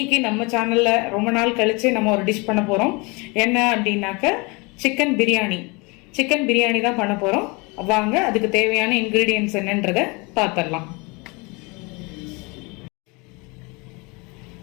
நம்ம சேனலில் ரொம்ப நாள் கழித்து நம்ம ஒரு டிஷ் பண்ண போகிறோம். என்ன அப்படின்னாக்க சிக்கன் பிரியாணி தான் பண்ண போகிறோம். வாங்க அதுக்கு தேவையான இன்க்ரீடியன்ட்ஸ் என்னன்றதை பார்த்துடலாம்.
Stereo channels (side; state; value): right; quieter; 27.9 dB